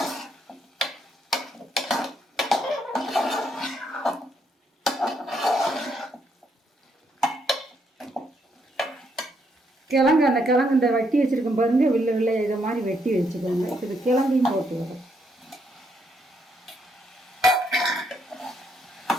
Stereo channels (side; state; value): both; normal; correlation 0.75